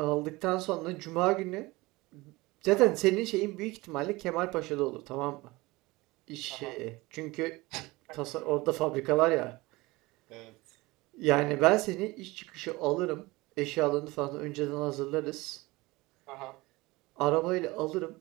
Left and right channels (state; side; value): quieter; left; 21.7 dB